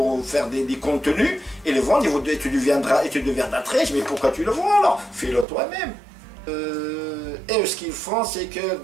faire des contenus, et les vendre, et tu deviendras très riche. Mais pourquoi tu le vends alors? Fais-le toi-même. Et ce qu'ils font, c'est que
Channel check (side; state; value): left; drops out; at 5.5 s